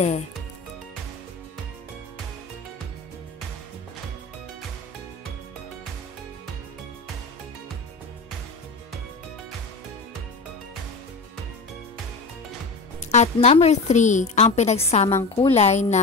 At number 3, ang pinagsamang kulay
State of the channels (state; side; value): quieter; right; 3.6 dB